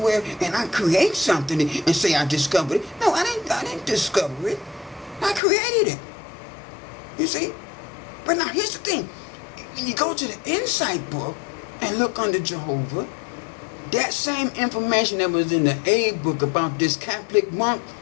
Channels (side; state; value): right; drops out; at 5.4 s